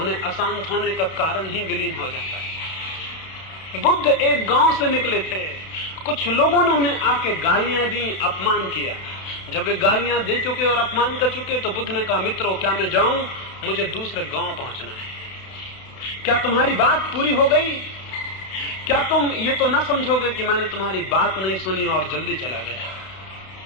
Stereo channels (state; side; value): late; right; 31 ms